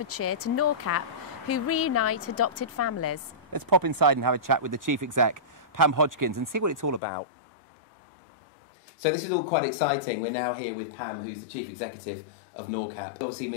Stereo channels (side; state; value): right; drops out; at 7.0 s